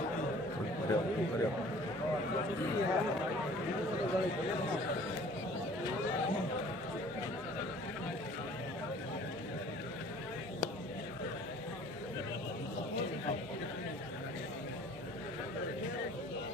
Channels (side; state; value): both; normal; correlation 0.51